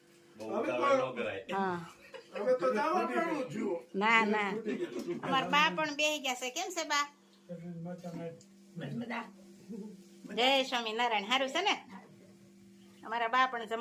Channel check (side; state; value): both; identical; correlation 1.00